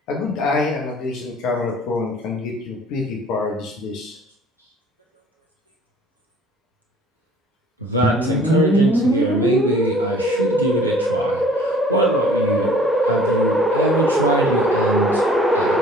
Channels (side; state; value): both; normal; correlation 0.52